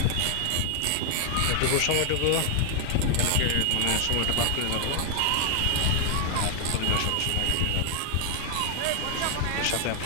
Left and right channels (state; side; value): different; both; correlation 0.00